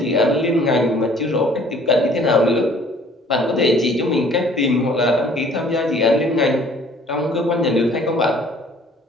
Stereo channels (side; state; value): both; normal; correlation 0.56